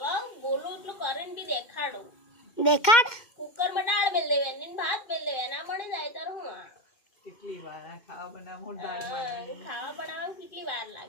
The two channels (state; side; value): late; right; 2.2 ms